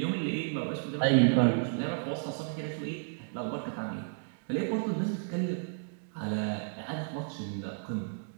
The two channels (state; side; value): silent; left; digital silence